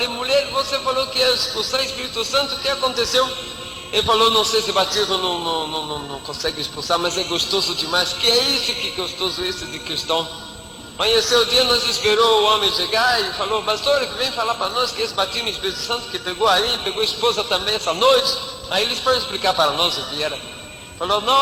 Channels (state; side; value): identical; both; correlation 1.00